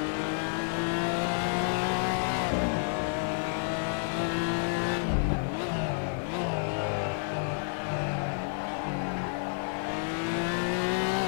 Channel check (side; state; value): right; silent; 58 dB below the other